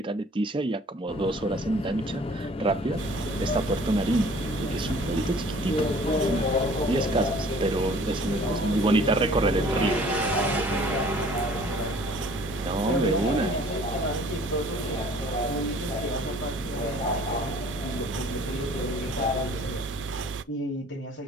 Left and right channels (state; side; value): normal; both; correlation 0.52